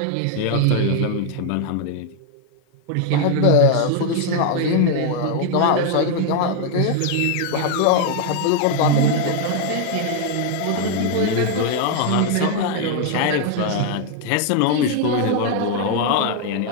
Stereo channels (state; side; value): different; both; correlation 0.00